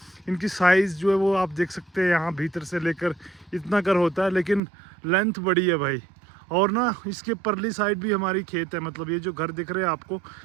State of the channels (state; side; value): drops out; left; at 4.6 s